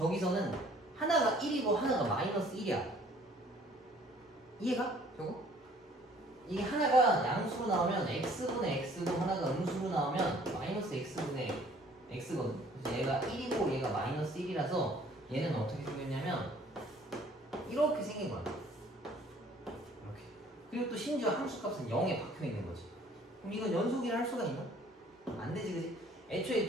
하나가 1이고 하나가 마이너스 1이야. 이해가? 저거? 이게 하나가 양수로 나오면 x분의 x고 하나가 음수로 나오면 마이너스 x분의 x거든. 그래서 얘가 1이고 얘가 마이너스 1이라서 얘는 어떻게 생겼냐면 이렇게 생긴 거야. 이렇게. 그리고 또 심지어 함수값은 0에 박혀있는 거지. 그럼 이건 연속이라 할 수가 있나? 안 되지, 그지? 애초에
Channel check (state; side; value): normal; both; correlation 0.56